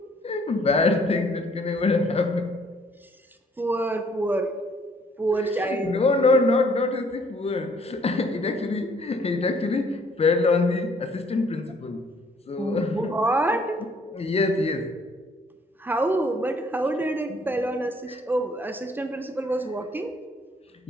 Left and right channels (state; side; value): normal; both; correlation 0.62